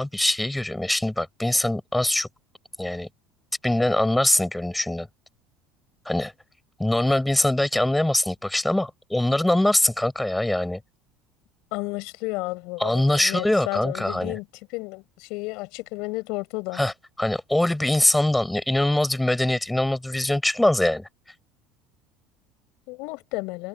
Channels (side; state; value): both; normal; correlation 0.97